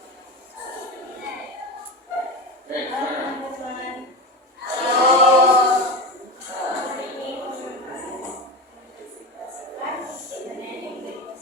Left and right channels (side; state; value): both; normal; correlation 0.22